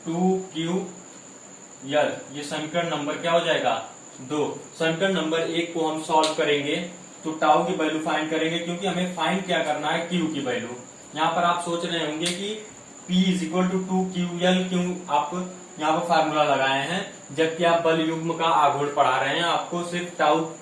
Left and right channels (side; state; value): both; identical; correlation 1.00